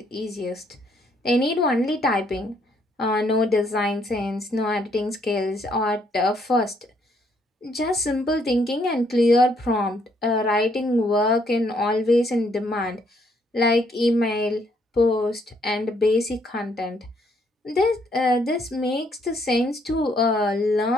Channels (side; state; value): both; normal; correlation 0.70